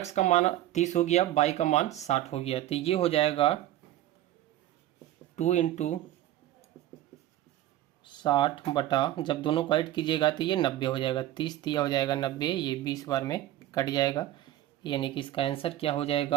का मान 30 हो गया, बाई का मान 60 हो गया, तो ये हो जाएगा 2 इंटू 60 बटा, जब दोनों को ऐड कीजिएगा तो ये 90 हो जाएगा। 30 दिया हो जाएगा 90, ये 20 बार में कट जाएगा, यानी कि इसका आंसर क्या हो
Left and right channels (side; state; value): left; quieter; 14.0 dB